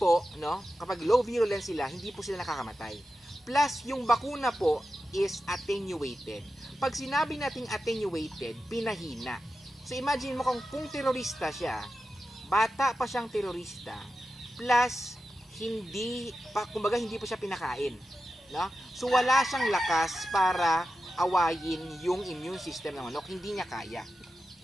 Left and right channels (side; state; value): both; normal; correlation 0.91